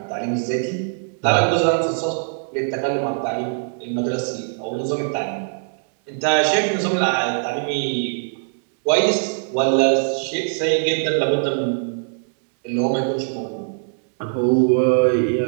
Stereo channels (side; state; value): left; silent; digital silence